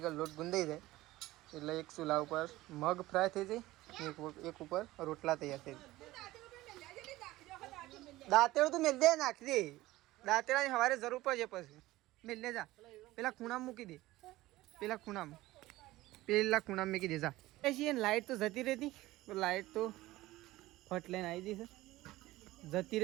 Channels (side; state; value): left; quieter; 17.6 dB